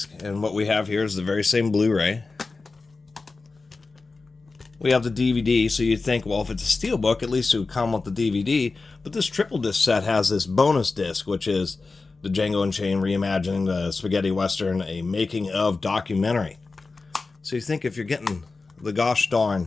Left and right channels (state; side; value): quieter; right; 3.9 dB